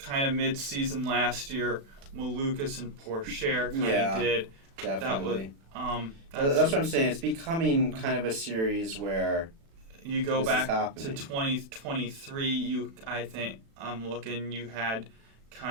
of mid-season last year. Malukas and Pourchaire kind of did. Definitely. That was, that's what I'm saying. It's becoming kind of a series where you go back to 2023. I think I'm looking. You had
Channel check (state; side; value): late; left; 36 ms